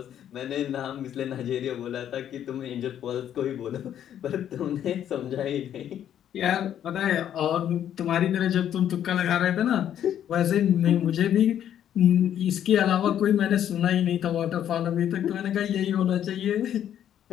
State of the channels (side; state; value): right; quieter; 10.3 dB